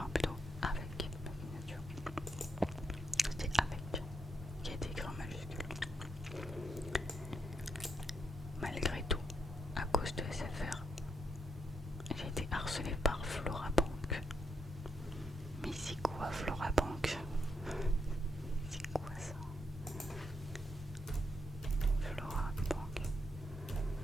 plutôt avec ma signature. C'est avec qui a été écrit en majuscule. Malgré tout, à cause de SFR, j'ai été harcelée par Florabank. Mais c'est quoi Florabank? C'est quoi ça? Florabank.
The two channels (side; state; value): both; normal; correlation 0.79